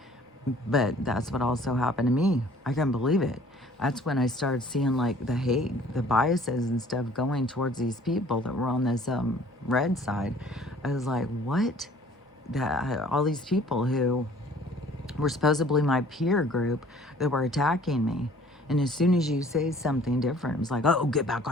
But that's what also happened to me. I couldn't believe it. That's when I started seeing like the hate, the biases and stuff going towards these people that were on this red side. I was like, what? All these people who were supposedly my peer group that were attacking me. And as soon as you say something different, it was like, oh, get back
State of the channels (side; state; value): both; normal; correlation 0.53